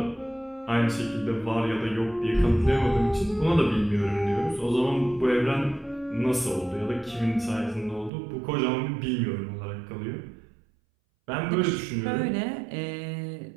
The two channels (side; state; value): left; drops out; at 8.1 s